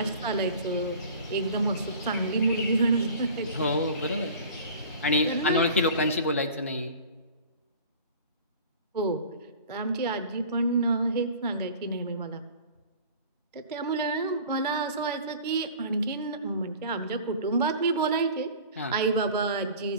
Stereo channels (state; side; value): inverted; both; correlation -0.42